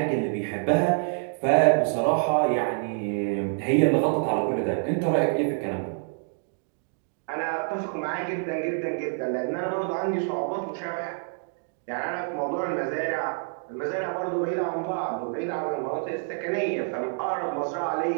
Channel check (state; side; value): silent; left; 60 dB below the other